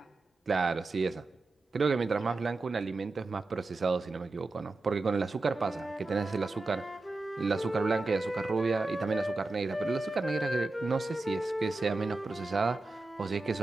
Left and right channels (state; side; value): quieter; left; 3.3 dB